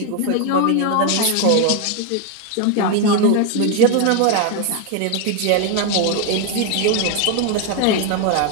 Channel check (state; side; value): different; both; correlation 0.01